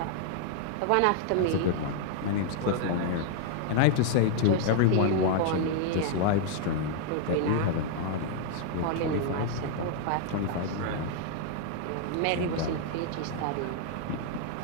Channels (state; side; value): different; both; correlation -0.01